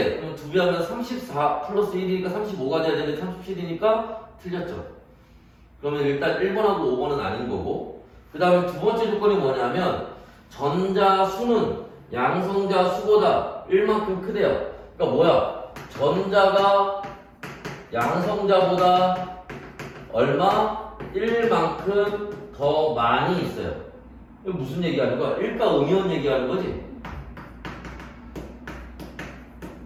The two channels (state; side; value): identical; both; correlation 1.00